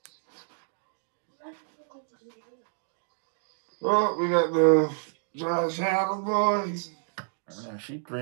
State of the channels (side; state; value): left; silent; 59 dB below the other